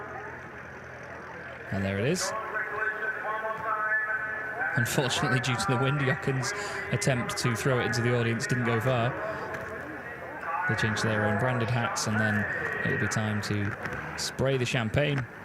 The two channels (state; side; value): identical; both; correlation 1.00